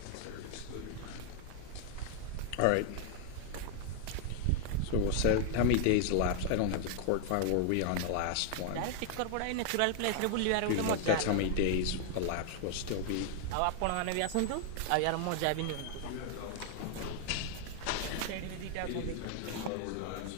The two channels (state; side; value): different; both; correlation 0.00